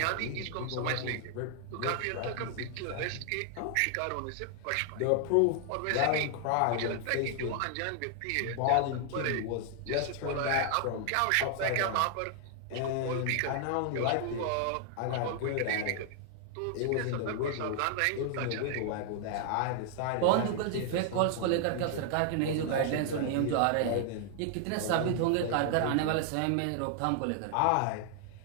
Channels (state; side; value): different; both; correlation 0.00